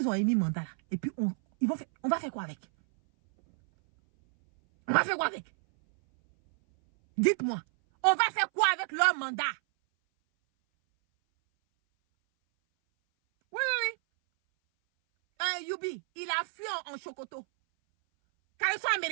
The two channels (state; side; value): silent; left; 58 dB below the other